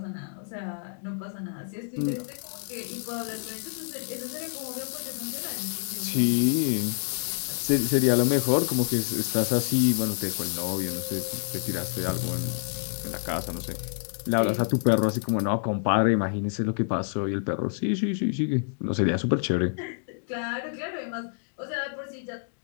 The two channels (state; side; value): silent; right; digital silence